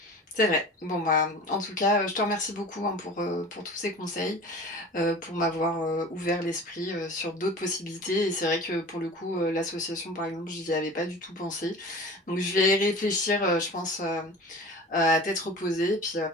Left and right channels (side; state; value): both; normal; correlation 0.38